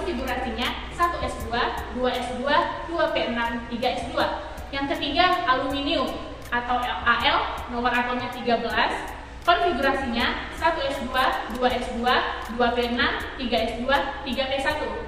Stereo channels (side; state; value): both; identical; correlation 1.00